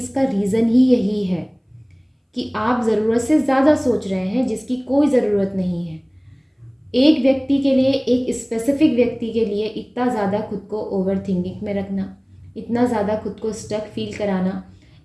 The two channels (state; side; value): identical; both; correlation 1.00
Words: का रीज़न ही यही है कि आप ज़रूरत से ज़्यादा सोच रहे हैं जिसकी कोई ज़रूरत नहीं है। एक व्यक्ति के लिए, एक स्पेसिफिक व्यक्ति के लिए इतना ज़्यादा खुद को ओवर थिंकिंग में रखना, इतना ज़्यादा खुद को स्टक फील कराना,